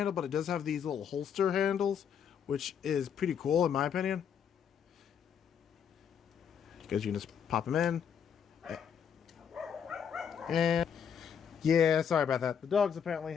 but it does have these little holster handles, which is pretty cool in my opinion. Because you can just pop them in. And yeah, sorry about that. The dogs apparently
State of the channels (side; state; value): right; quieter; 7.8 dB